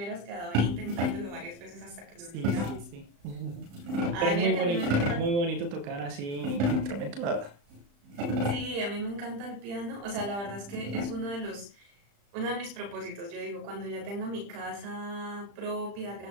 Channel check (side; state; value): left; late; 35 ms